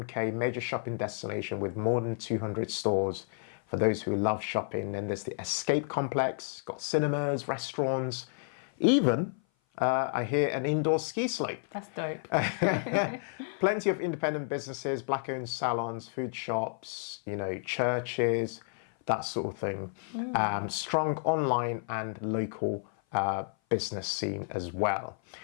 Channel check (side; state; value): right; silent; 55 dB below the other